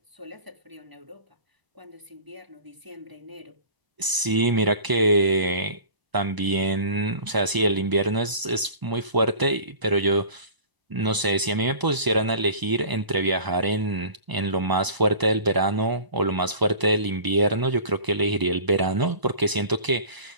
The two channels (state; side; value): late; left; 1.0 ms